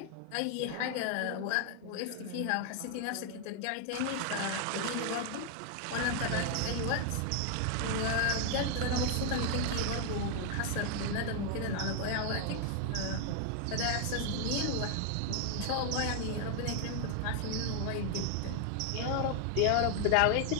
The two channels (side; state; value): both; different; correlation 0.00